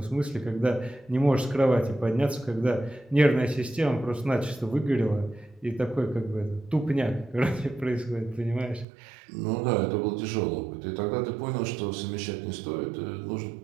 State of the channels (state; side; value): drops out; left; at 8.8 s